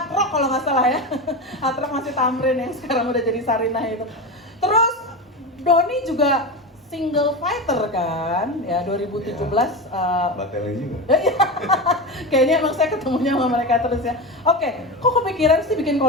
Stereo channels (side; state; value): both; normal; correlation 0.21